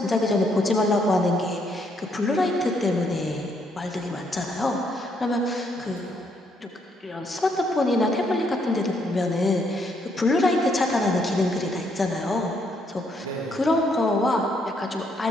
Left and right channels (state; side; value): normal; both; correlation 0.72